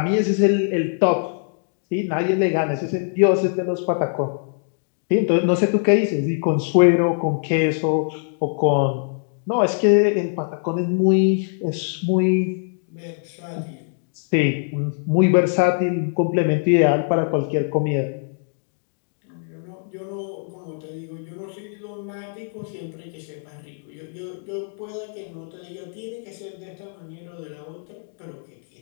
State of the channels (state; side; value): silent; right; 64 dB below the other